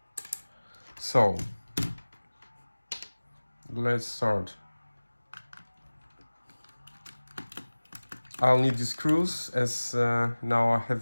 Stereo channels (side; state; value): both; inverted; correlation -1.00